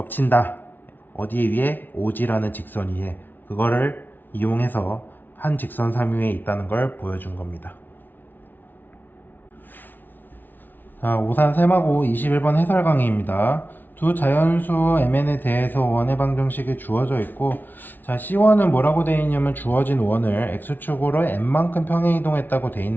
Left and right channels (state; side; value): late; right; 0.089 ms